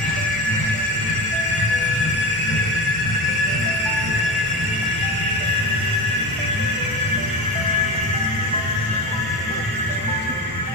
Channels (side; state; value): both; normal; correlation 0.24